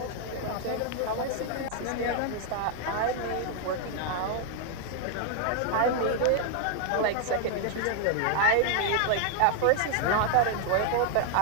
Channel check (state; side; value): different; both; correlation 0.00